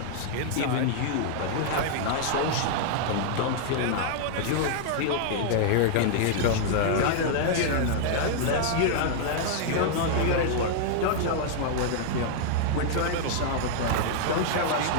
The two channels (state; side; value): different; both; correlation -0.01